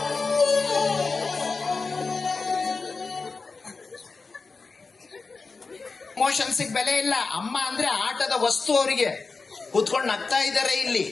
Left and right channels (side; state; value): right; quieter; 4.2 dB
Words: ಇಮೋಷನ್ಸ್ ಬೆಲೆ ಇಲ್ಲ. ಅಮ್ಮ ಅಂದ್ರೆ ಆಟದ ವಸ್ತು, ಅವರಿಗೆ ಕೂತ್ಕೊಂಡು ನಗ್ತಾ ಇದ್ದಾರೆ ಇಲ್ಲಿ.